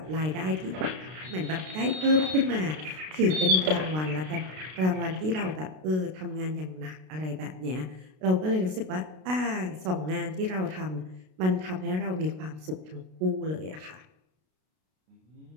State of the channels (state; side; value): late; left; 32 ms